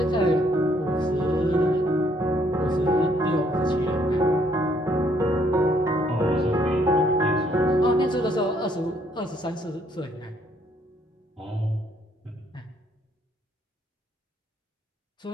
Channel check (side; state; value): both; normal; correlation 0.67